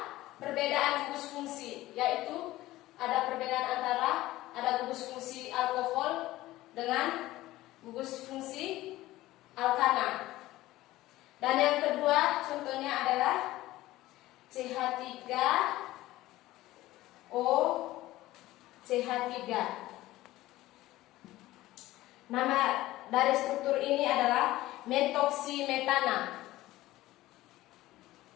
perbedaan gugus fungsi, yaitu ada perbedaan antara ada gugus fungsi alkohol dengan gugus fungsi alkana. Dan yang kedua contohnya adalah CH3O, CH3. Nama dari struktur ini adalah metoksimetana.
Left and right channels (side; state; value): right; quieter; 16.7 dB